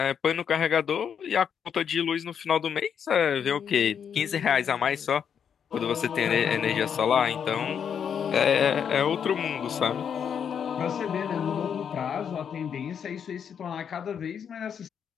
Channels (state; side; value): quieter; right; 7.7 dB